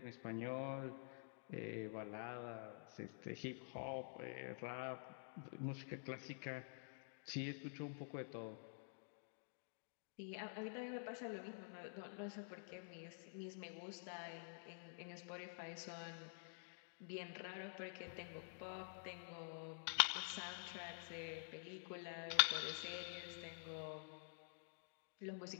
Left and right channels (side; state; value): right; silent; digital silence